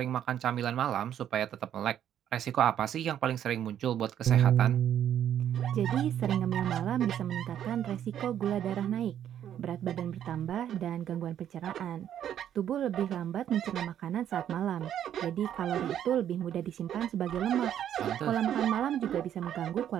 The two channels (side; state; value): left; quieter; 10.2 dB